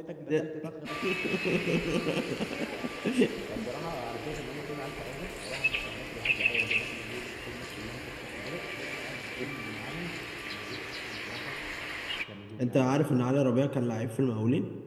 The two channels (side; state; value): both; identical; correlation 1.00